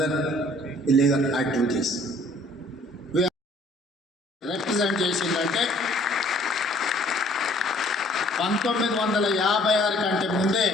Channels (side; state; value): both; normal; correlation 0.58